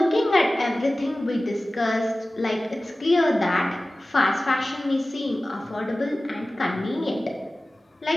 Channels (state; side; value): normal; both; correlation 0.97